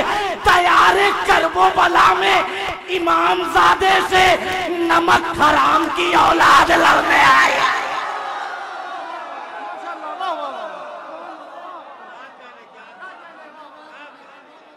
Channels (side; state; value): both; identical; correlation 1.00